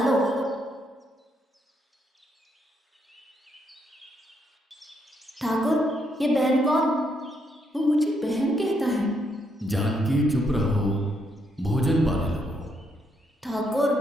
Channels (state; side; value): normal; both; correlation 0.76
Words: लो। ठाकुर, ये बहन कौन? वो मुझे बहन कहता है। जानकी चुप रहो, भोजन पाने लगो। ठाकुर,